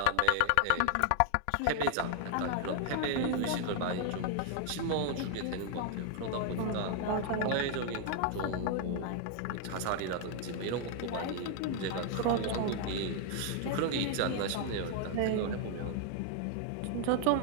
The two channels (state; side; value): different; both; correlation 0.00